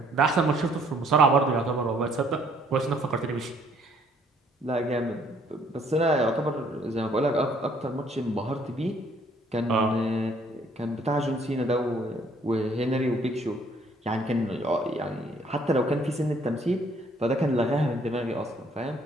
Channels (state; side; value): normal; both; correlation 0.63